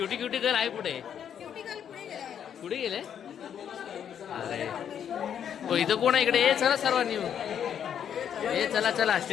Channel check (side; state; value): right; quieter; 8.8 dB